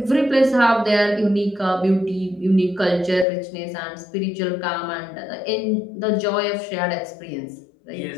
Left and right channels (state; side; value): drops out; right; at 3.2 s